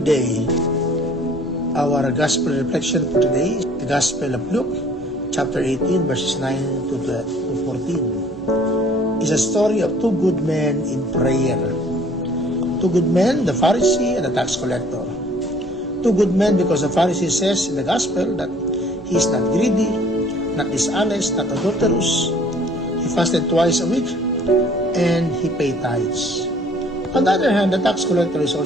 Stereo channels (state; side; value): normal; both; correlation 0.55